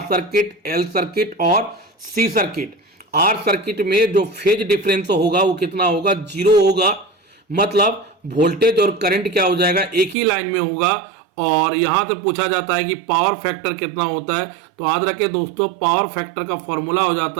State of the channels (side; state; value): left; drops out; at 10.2 s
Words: सर्किट, एल सर्किट और सी सर्किट। आर सर्किट में जो फेज डिफरेंस होगा वो कितना होगा? 0 होगा। मतलब वोल्टेज और करंट क्या हो जाएगा? एक ही लाइन में होगा। और यहां से पूछा जाता है कि पावर फैक्टर कितना होता है? तो याद रखें दोस्तों, पावर फैक्टर का फॉर्मूला हो